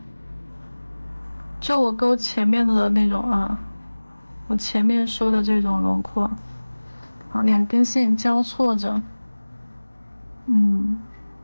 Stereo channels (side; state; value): both; inverted; correlation -1.00